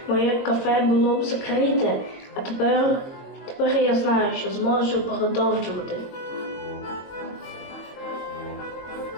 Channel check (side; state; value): right; late; 22 ms